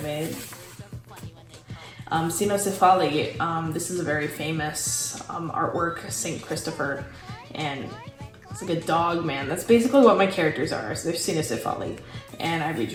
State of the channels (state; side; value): identical; both; correlation 1.00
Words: made. Cynocephali, this is a very famous artwork, St. Christopher, and it's like a dog man. That's basically what my characters are. So they're Cynocephali, and I